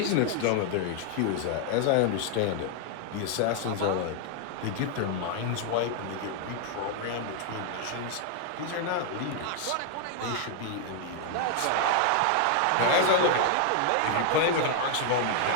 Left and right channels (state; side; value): different; both; correlation 0.00